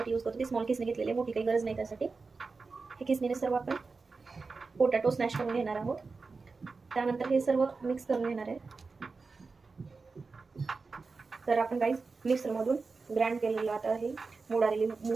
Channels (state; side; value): quieter; left; 4.3 dB